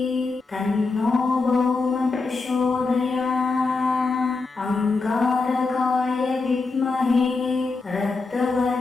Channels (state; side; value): quieter; right; 4.0 dB